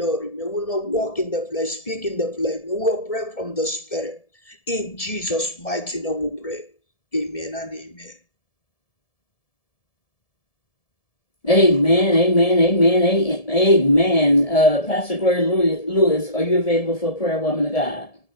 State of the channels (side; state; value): right; late; 1.7 ms